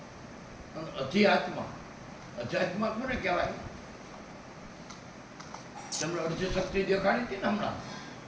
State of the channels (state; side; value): identical; both; correlation 1.00